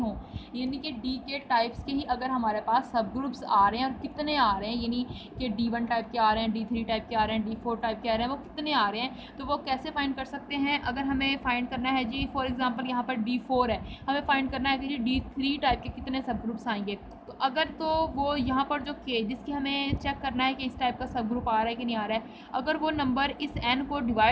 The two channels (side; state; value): both; identical; correlation 1.00